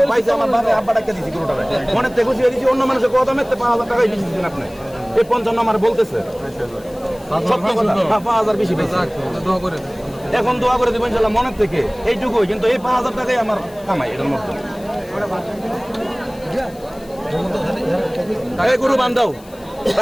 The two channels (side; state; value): left; noise; hiss, 25 dB below the sound